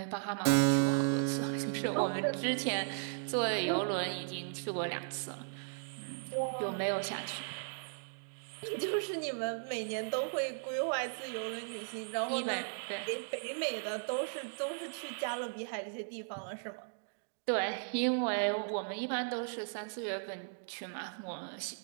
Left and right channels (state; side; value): silent; left; digital silence